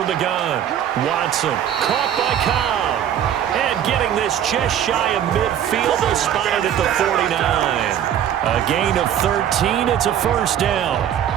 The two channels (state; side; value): quieter; left; 10.0 dB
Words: the gun. Watson caught by Cobb. And getting this just shy of midfield. They'll spot it at the 49. A gain of 13. It's a 1st down.